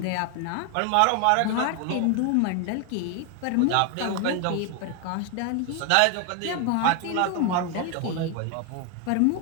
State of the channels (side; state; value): both; different; correlation 0.01